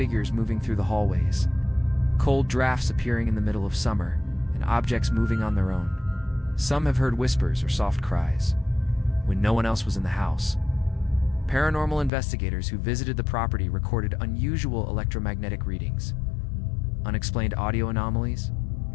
moving through the hallways, cold drafts appearing in the middle of summer, and objects moving on their own. Some have heard whispers or soft cries when no one else was in the house. Paranormal investigators who visited the property recorded unusual electromagnetic readings, unexplained audio anomalies,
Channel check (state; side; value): drops out; right; at 12.1 s